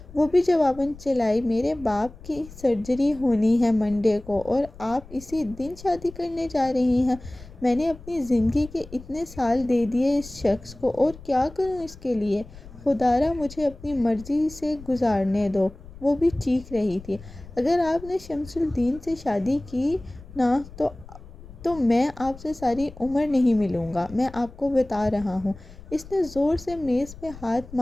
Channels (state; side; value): noise; left; rumble, 18 dB below the sound